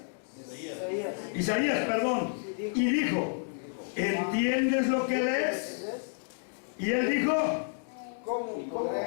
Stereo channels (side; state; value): right; silent; digital silence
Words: Isaías, perdón. Y dijo: ¿entiendes lo que lees? Y él dijo: ¿Cómo